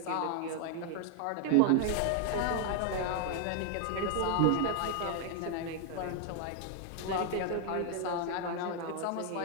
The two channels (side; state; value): both; different; correlation 0.00